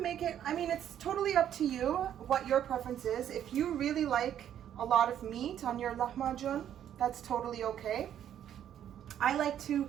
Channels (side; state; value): left; quieter; 10.2 dB